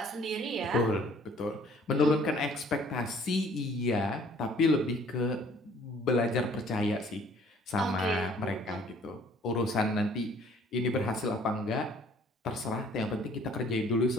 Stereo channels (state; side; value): normal; both; correlation 0.57